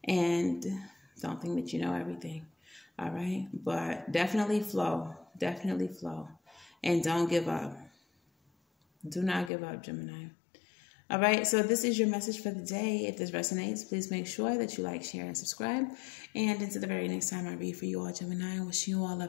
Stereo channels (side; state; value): right; drops out; at 9.5 s